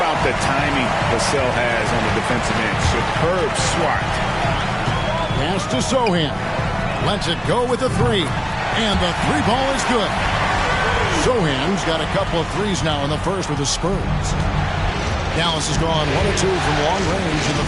the timing Vassell has on the defensive end? Superb swat. Pass to Sohan. Lets it go with the 3. And the 3 ball is good. Sohan's got a couple of threes now in the first with the Spurs. Dallas has gone 1 of 2 from long range in the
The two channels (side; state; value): both; identical; correlation 1.00